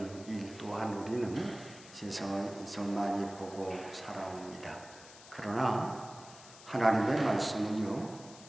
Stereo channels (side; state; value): left; noise; hiss, 18 dB below the sound